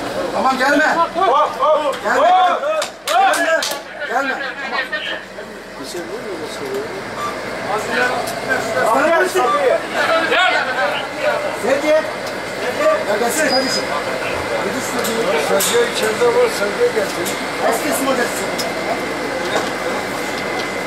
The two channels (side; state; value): both; identical; correlation 1.00